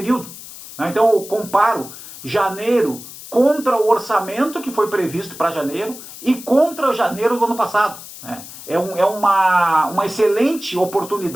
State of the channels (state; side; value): noise; left; hiss, 15 dB below the sound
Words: Então eu comparo janeiro contra o orçamento que foi previsto para janeiro e contra janeiro do ano passado. É uma excelente